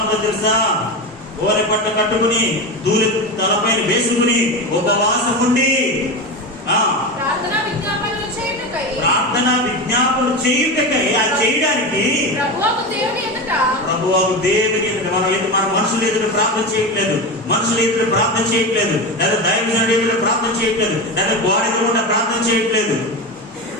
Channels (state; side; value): normal; both; correlation 0.21